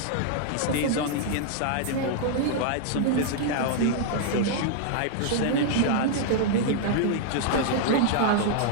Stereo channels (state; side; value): different; both; correlation 0.00